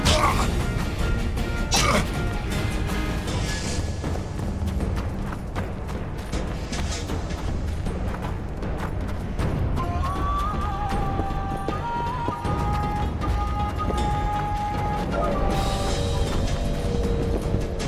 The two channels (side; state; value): both; identical; correlation 1.00